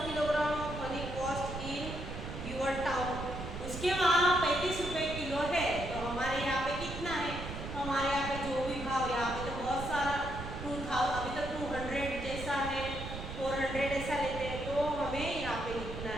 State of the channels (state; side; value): noise; right; rumble, 8 dB below the sound